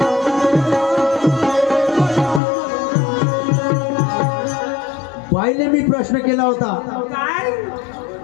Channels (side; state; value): right; drops out; at 2.4 s